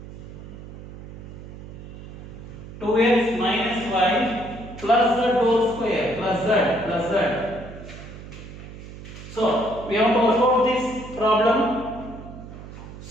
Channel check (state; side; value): noise; right; hum, 14 dB below the sound